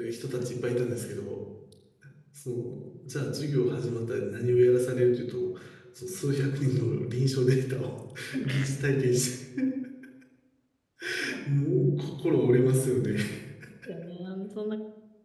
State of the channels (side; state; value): both; identical; correlation 1.00